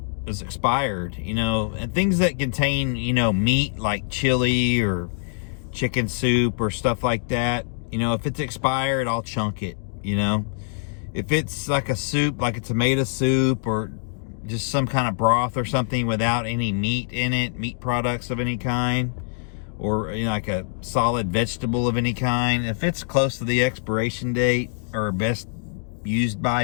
expired, and things that contain, meat like chili or chicken soup or stuff like that. If it's expired, I'll chunk it, If it's like a soup, like a tomato soup or just some kind of broth or something without any meat in it, meat products of any kind, or like a solid vegetable of any kind, if it's close to the expiration date or best used by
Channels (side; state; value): right; silent; digital silence